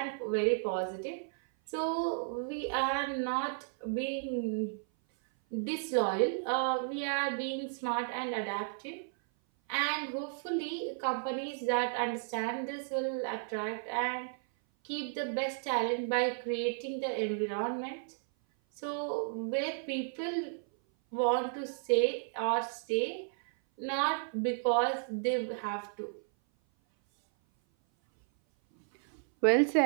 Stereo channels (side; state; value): left; silent; 55 dB below the other